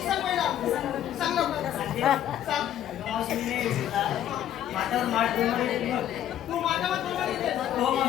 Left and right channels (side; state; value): right; quieter; 11.2 dB